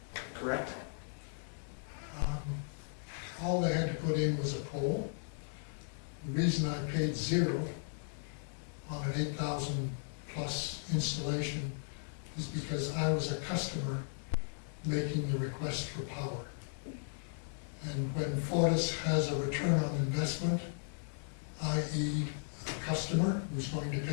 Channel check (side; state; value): right; silent; digital silence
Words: correct? All they had to put in was a pole. The reason I paid zero on an 8,000 plus installation is because I was a customer making the request for power. And when Fortis has a return on investment, i.e. a customer who's going to